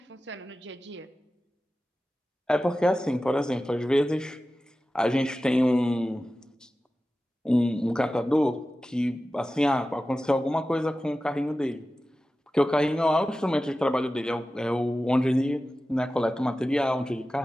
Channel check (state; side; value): normal; both; correlation 0.95